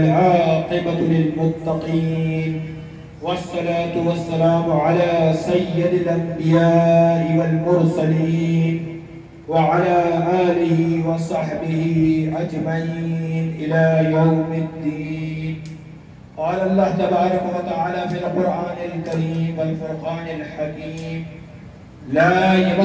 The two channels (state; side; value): identical; both; correlation 1.00